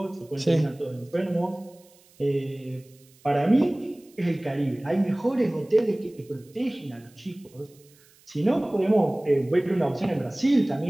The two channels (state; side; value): noise; right; hiss, 29 dB below the sound